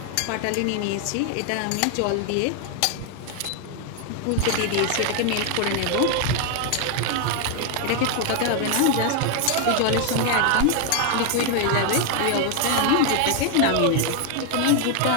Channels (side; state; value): both; different; correlation 0.01